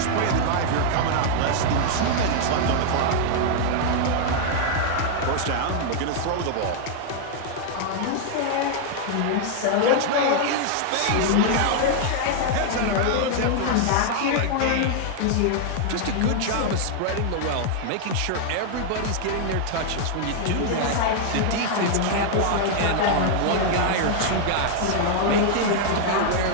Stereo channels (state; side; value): different; both; correlation -0.01